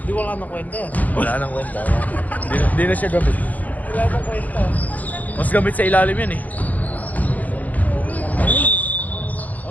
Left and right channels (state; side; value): late; right; 0.078 ms